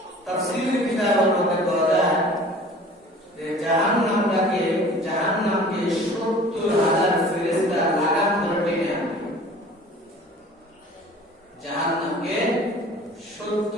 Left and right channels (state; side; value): normal; both; correlation 0.46